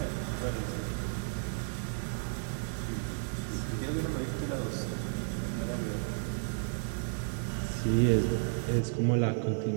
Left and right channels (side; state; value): left; silent; digital silence